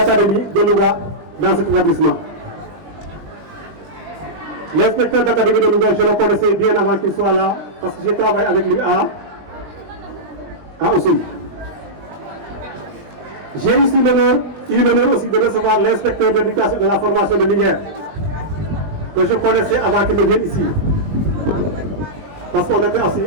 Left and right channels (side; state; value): left; late; 20 ms